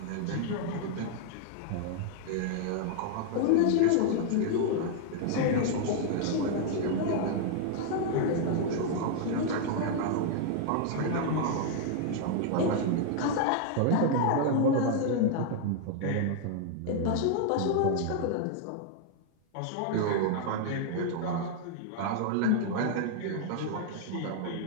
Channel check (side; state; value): both; different; correlation 0.00